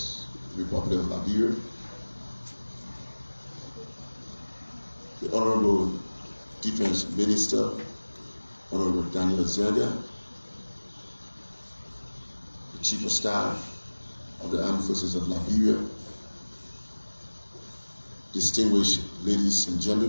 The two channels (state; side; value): inverted; both; correlation -1.00